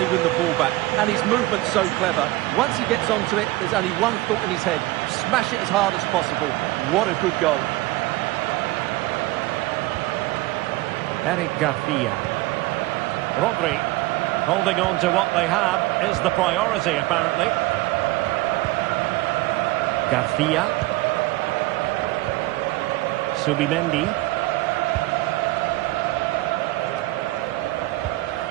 win the ball back. And his movement's so clever. Once he gets onto it, there's only one thought in his head. Smash it as hard as possible. What a good goal. Eric Garcia. Rodri. Holding on to what they have is the priority, apparently. Garcia. Subimendi.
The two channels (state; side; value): quieter; left; 19.5 dB